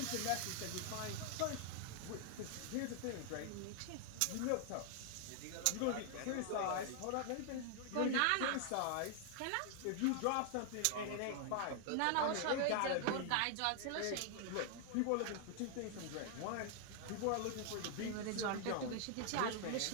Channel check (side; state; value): both; different; correlation 0.00